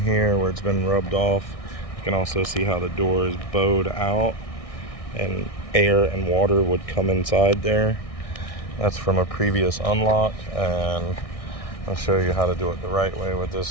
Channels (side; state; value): right; late; 1.6 ms